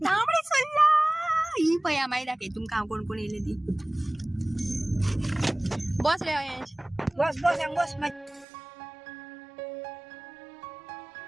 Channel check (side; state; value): left; drops out; at 8.5 s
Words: तांबडे सुर्ला ही पळया मागीर दाखय तुमकां हांव कोण कोण येयले ती बस रे अयंश बस